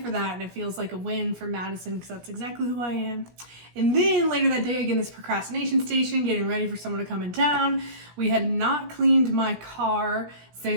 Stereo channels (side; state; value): left; late; 17 ms